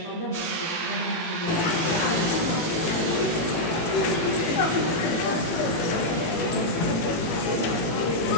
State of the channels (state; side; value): late; right; 18 ms